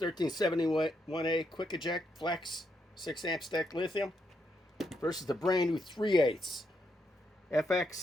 Quick Eject Flex 6 amp stack lithium versus the brand new 3/8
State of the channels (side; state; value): both; normal; correlation 0.79